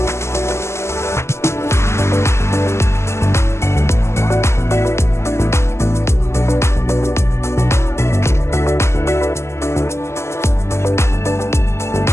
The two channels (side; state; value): right; late; 0.13 ms